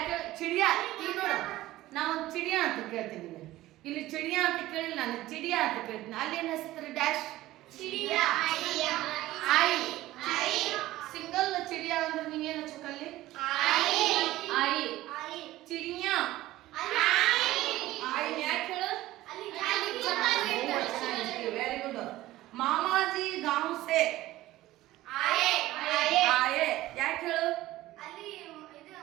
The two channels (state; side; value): quieter; left; 16.3 dB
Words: ಚಿಡಿಯಾ? ಈಗ ನೋಡು, ನಾವು ಚಿಡಿಯಾ ಅಂತ ಕೇಳ್ತೀನಿ. ಇಲ್ಲಿ ಚಿಡಿಯಾ ಅಂತ ಕೇಳಿಲ್ಲ, ನಾನು ಚಿಡಿಯಾ ಅಂತ ಕೇಳ್ತೀನಿ. ಅಲ್ಲಿ ಏನು ಹೆಸರು? ಡ್ಯಾಶ್ ಆಯಿ. ಸಿಂಗಲ್ ಚಿಡಿಯಾ ಅಂದ್ರೆ ನೀವೇನು ಹಚ್ಚಬೇಕಲ್ಲಿ? ಆಯಿ. ಚಿಡಿಯಾ ಆಯಿ ಯಾಕೆ ಹೇಳು? Very good. ಮಾಮಾಜಿ ಗಾಂವ್ ಸೆ ಆಯೆ ಯಾಕೆ ಹೇಳು?